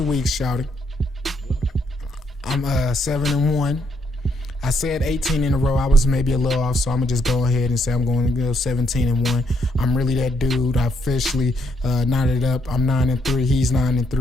weeks, shouting, I'm 7-1. I said 18 in a row. I was maybe a little off, so I'm gonna just go ahead and say I'm going to go 17-1. I'm really that dude. I officially knotted up. I'm 9-3. He's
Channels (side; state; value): both; normal; correlation 0.73